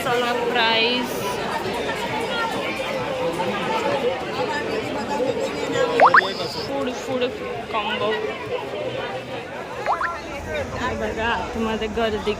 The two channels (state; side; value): identical; both; correlation 1.00